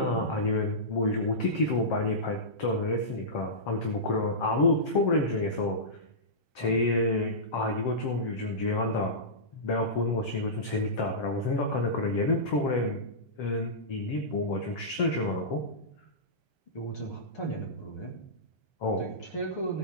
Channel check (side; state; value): right; late; 1.3 ms